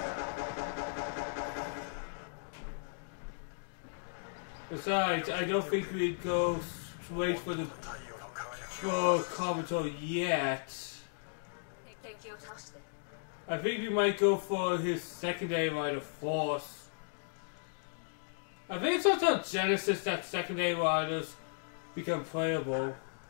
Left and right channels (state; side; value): silent; right; digital silence